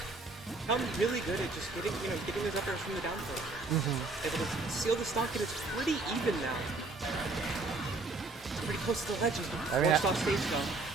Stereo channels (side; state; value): left; quieter; 3.4 dB